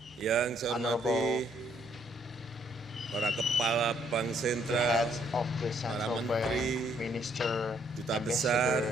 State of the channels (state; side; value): normal; both; correlation 0.68